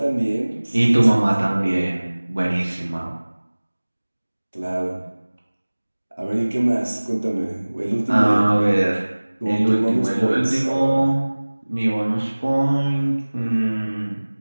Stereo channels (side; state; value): both; inverted; correlation -1.00